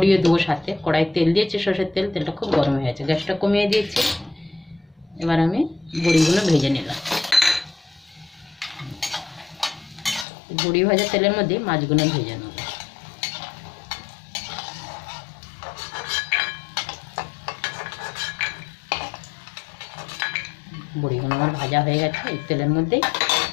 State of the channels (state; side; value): drops out; right; at 10.2 s